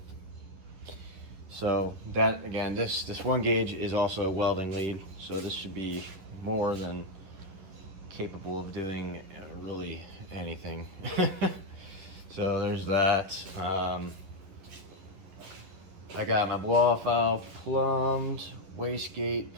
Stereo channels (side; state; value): left; late; 10 ms